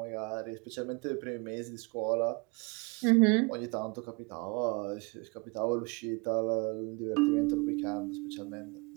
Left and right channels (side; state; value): left; quieter; 29.6 dB